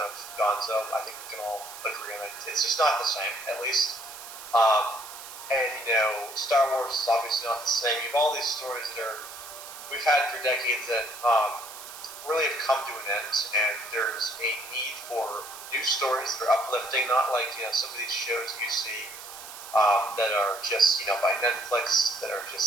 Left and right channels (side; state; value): right; noise; hiss, 13 dB below the sound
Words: of gonzo. I think we can all agree on it. It's just not the same, at least. And Star Wars is obviously not the same. You have all these stories that we've had for decades that really have come to an end, and there's a need for new stories that are uplifting, not like some of these shows you see that are just by Netflix, that are